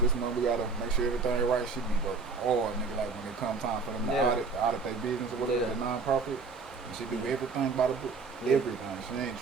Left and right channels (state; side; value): quieter; left; 4.5 dB